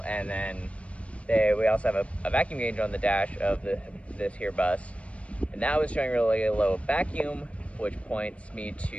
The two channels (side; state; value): right; late; 0.063 ms